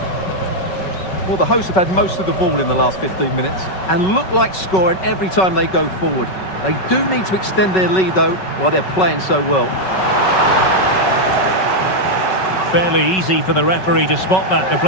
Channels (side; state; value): right; late; 5.3 ms